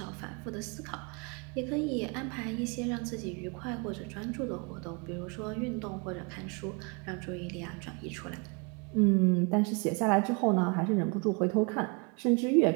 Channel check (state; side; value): quieter; left; 32.7 dB